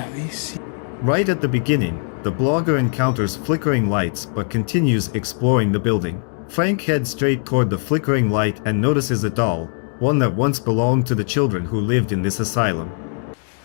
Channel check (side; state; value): right; silent; 59 dB below the other